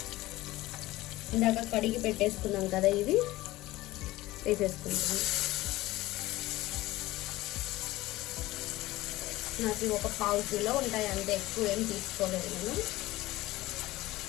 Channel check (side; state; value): right; quieter; 17.9 dB